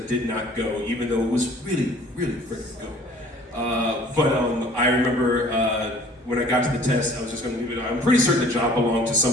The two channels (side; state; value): both; normal; correlation 0.51